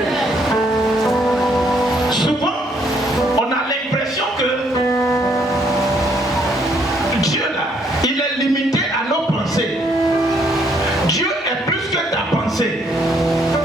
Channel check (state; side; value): normal; both; correlation 0.69